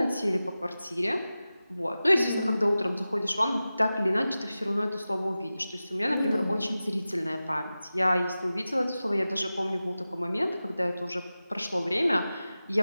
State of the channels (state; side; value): inverted; both; correlation -0.95